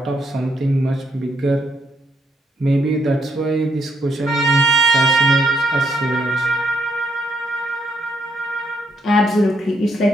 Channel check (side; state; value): both; normal; correlation 0.74